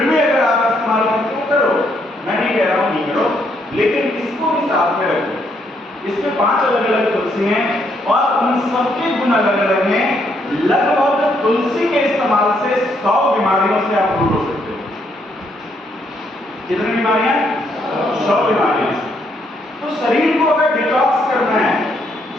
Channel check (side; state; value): both; normal; correlation 0.73